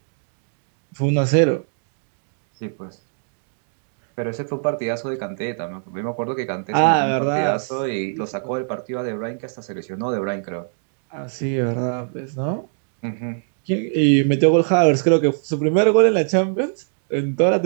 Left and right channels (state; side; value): silent; left; digital silence